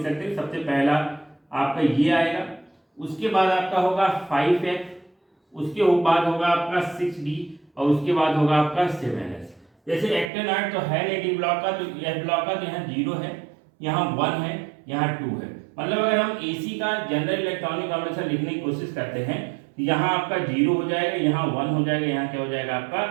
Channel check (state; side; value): drops out; left; at 10.3 s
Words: सकते हैं। सबसे पहला आपका ये आएगा, उसके बाद आपका होगा 5F, उसके बाद होगा आपका 6D, और उसके बाद होगा आपका 7S। जैसे एक्टेनाइड तो है नहीं डी ब्लॉक का, तो एफ ब्लॉक का, तो यहाँ 0 है, यहाँ 1 है, यहाँ 2 है। मतलब अगर हम AC का जनरल इलेक्ट्रॉनिक कॉन्फ़िगरेशन लिखने की कोशिश करते हैं, यहाँ आपका 0 हो जाएगा, यहाँ 1 हो जाएगा, यहाँ क्या हो जाएगा आपका